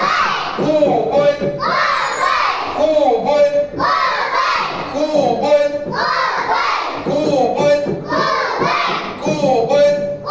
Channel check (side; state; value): both; identical; correlation 1.00